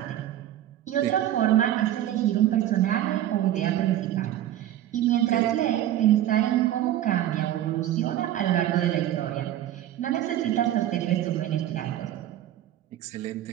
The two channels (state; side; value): quieter; left; 12.4 dB